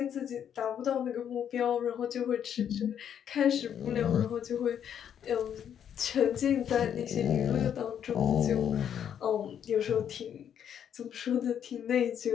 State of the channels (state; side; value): quieter; right; 9.0 dB